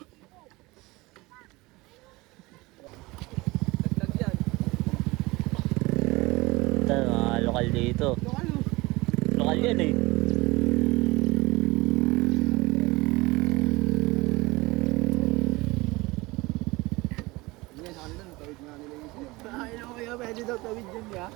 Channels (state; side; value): quieter; left; 22.0 dB